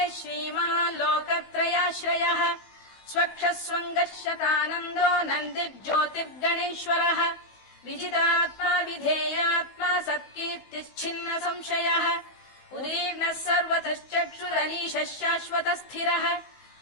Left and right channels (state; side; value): late; right; 16 ms